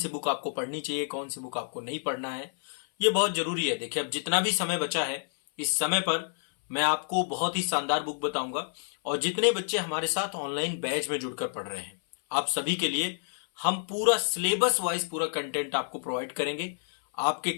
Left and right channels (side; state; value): right; silent; 59 dB below the other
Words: बुक आपको पढ़नी चाहिए, कौन सी बुक आपको नहीं पढ़ना है, ये बहुत जरूरी है। देखिए, अब जितना भी समय बचा है, इस समय पर मैं आपको बहुत ही शानदार बुक बताऊंगा और जितने बच्चे हमारे साथ ऑनलाइन बैच में जुड़कर पढ़ रहे हैं, आप सभी के लिए हम पूरा सिलेबस वाइज पूरा कंटेंट आपको प्रोवाइड करेंगे। आपके